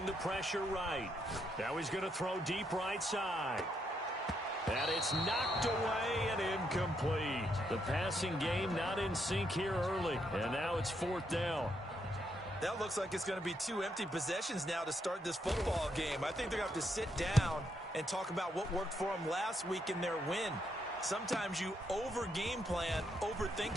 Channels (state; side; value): normal; both; correlation 0.77